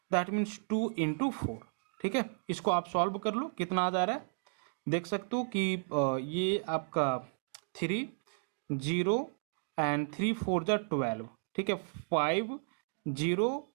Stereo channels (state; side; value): silent; left; digital silence